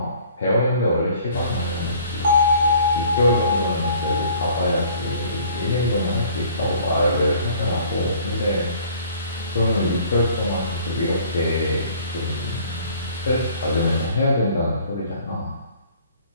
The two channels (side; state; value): both; inverted; correlation -0.53